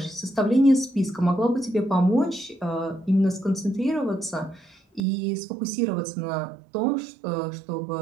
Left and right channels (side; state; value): left; drops out; at 5.0 s